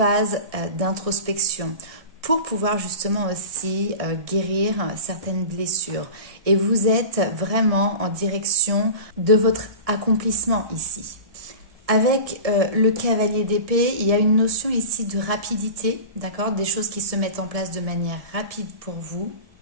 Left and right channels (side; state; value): left; late; 1.7 ms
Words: d'introspection pour pouvoir justement aussi guérir certaines blessures. Et vous êtes vraiment en direction de votre accomplissement ici. Avec le cavalier d'épée, il y a une notion ici de rapidité, d'accord? Des choses qui se mettent en place de manière rapide pour vous.